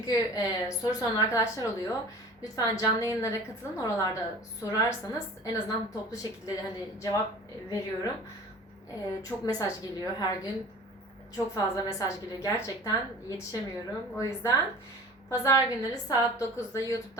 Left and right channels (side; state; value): both; normal; correlation 0.42